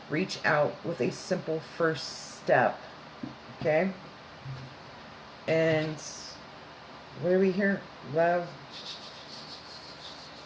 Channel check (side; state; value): both; identical; correlation 1.00